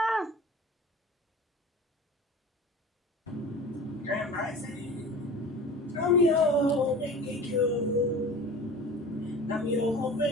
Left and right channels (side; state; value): both; normal; correlation 0.38